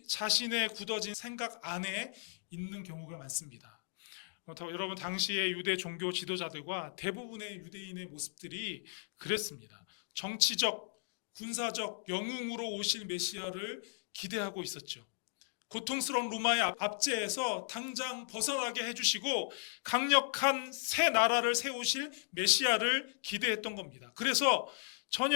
자신의 굳어진 생각 안에 있는 경우가 많습니다. 여러분, 당시의 유대 종교 지도자들과 대부분의 유대인의 모습들이 그랬습니다. 정치적, 군사적 영웅으로 오실 메시아를 기대하고 있었죠. 고통스러운 로마의 압제에서 당장 벗어나게 해주시고 강력한 새 나라를 세우실 메시아를 기대했던 겁니다. 그래서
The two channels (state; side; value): silent; right; digital silence